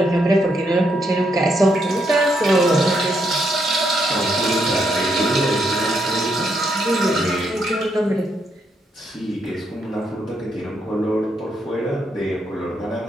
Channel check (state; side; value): normal; both; correlation 0.76